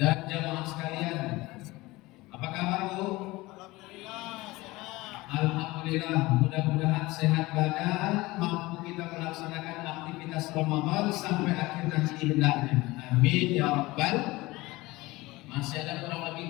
jamaah sekalian. Apa kabar, Bu? Alhamdulillah, mudah-mudahan sehat badan, mampu kita melaksanakan aktivitas Ramadan sampai akhir nanti hendaknya. Amin ya rabbal. Masih ada kurang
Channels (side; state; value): right; quieter; 20.5 dB